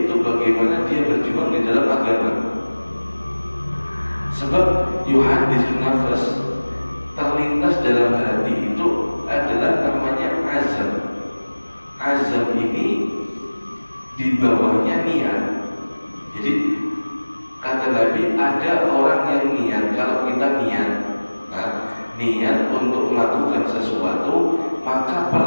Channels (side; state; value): both; inverted; correlation -1.00